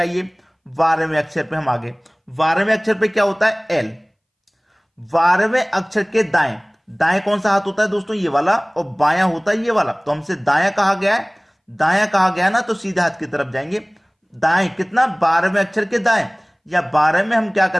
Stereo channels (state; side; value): identical; both; correlation 1.00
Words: 12वें अक्षर पे हम आगे, 12वें अक्षर पे क्या होता है एल। 12वें अक्षर के दाएं, दाएं कौन सा हाथ होता है दोस्तों ये वाला, और बायां होता है ये वाला, तो हमसे दायां कहा गया है, दायां कहा गया ना, तो सीधे हाथ की तरफ जाएंगे। दाएं कितना 12वें अक्षर के दाएं, या 12 में हम क्या